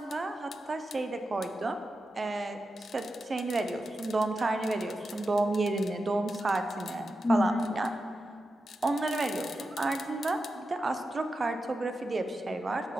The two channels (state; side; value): normal; both; correlation 0.89